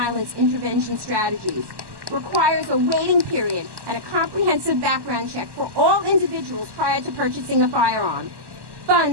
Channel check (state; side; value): late; left; 1.1 ms